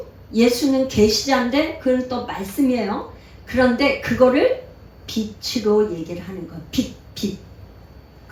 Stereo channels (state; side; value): identical; both; correlation 1.00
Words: 계시자인데 그건 또 말씀이에요. 그런데 그거를 빛으로 얘기를 하는 거예요. 빛.